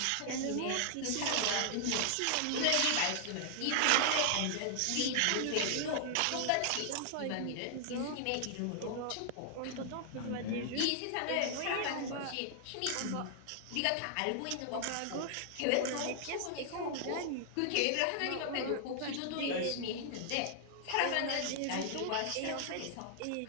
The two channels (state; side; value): different; both; correlation -0.01